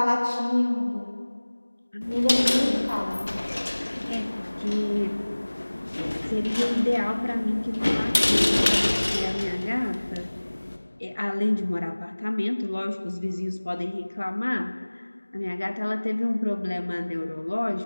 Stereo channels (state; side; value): inverted; both; correlation -1.00